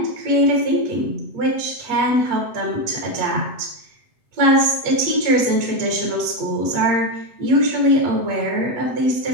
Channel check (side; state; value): left; late; 8.2 ms